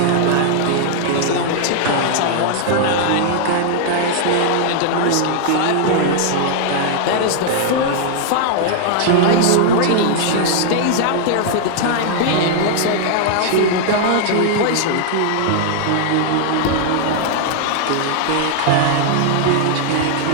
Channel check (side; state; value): both; different; correlation 0.00